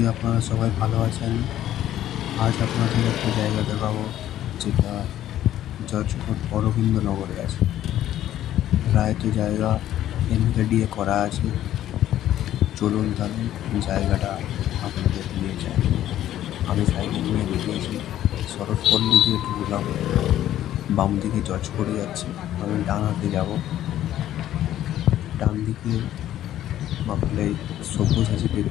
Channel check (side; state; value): right; quieter; 12.4 dB